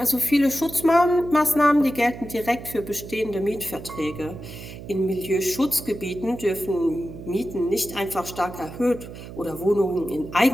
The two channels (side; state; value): right; noise; hum, 13 dB below the sound